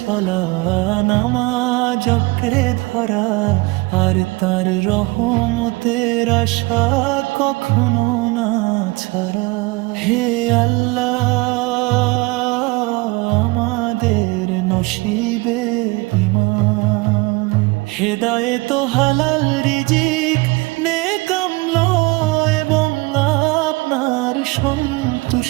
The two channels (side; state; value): left; quieter; 24.4 dB